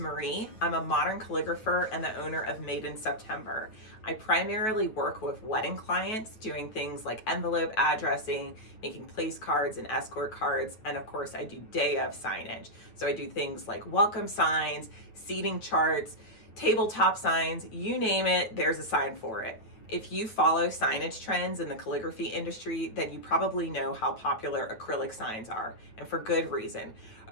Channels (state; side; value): late; right; 9.2 ms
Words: I'm a modern calligrapher and the owner of Made in September. I primarily work with wedding clients doing things like envelope addressing, making place cards and escort cards, and of course I do day of signage. So I do things like welcome signs, seating charts, tabletop signs, you name it, there's a sign for it. If you follow signage trends in the calligraphy industry, then you probably know how popular acrylic signs are, and for good reason.